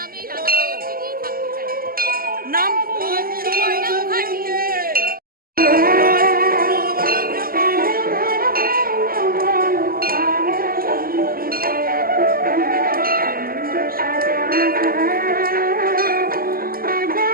আমি এই রাধাবল্লভকে নিয়েই থাকতে চাই। নাম? Suborna Mukherjee.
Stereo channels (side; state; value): left; late; 0.42 ms